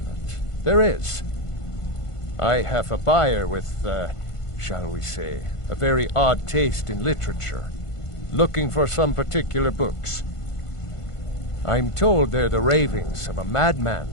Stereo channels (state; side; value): late; right; 1.5 ms